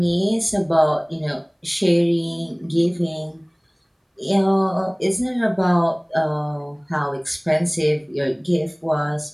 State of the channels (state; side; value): identical; both; correlation 1.00